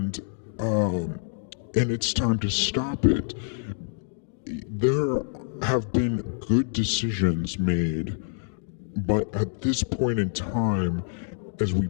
it's time to stop it. There have been good decisions made, but at this point in time, as we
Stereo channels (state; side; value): silent; right; digital silence